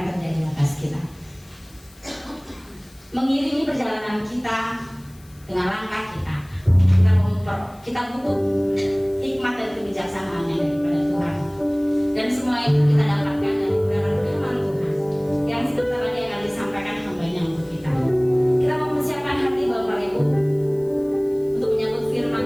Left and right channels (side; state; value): left; noise; hiss, 27 dB below the sound